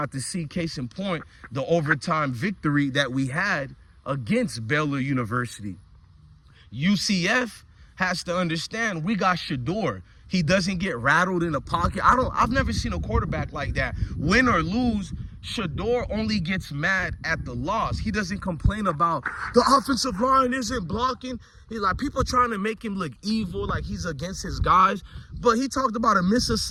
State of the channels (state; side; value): identical; both; correlation 1.00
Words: to see, case in point, the overtime victory that we had against Baylor University. UCF has to understand we got Shador. He doesn't get rattled in the pocket. I've never seen a quarterback like that. Win or lose, Shador only gets mad at the loss. He doesn't complain about the offensive line isn't blocking. He's like, people trying to make him look evil, like he's against his guys. But he talked about a